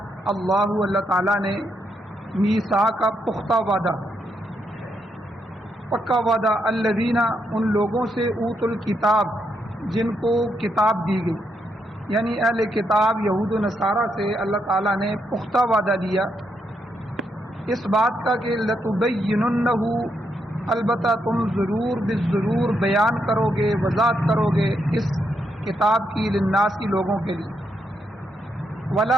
اللہ تعالیٰ نے میثاق کا پختہ وعدہ، پکا وعدہ، الذین، ان لوگوں سے، اوت الکتاب، جن کو کتاب دی گئی، یعنی اہل کتاب یہود و نصارہ سے اللہ تعالیٰ نے پختہ وعدہ دیا اس بات کا کہ لتبیننہ، البتہ تم ضرور بالضرور بیان کرو گے، وضاحت کرو گے اس کتاب کی، للناس کی، لوگوں کے لیے،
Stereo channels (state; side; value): normal; both; correlation 0.79